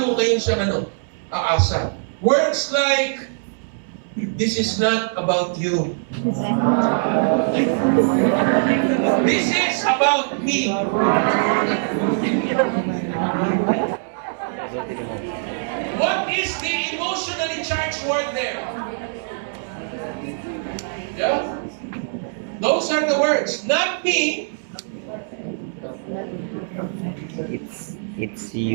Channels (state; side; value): silent; left; 63 dB below the other